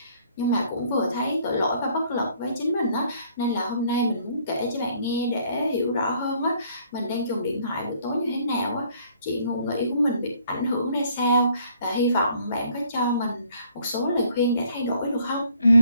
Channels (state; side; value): inverted; both; correlation -0.62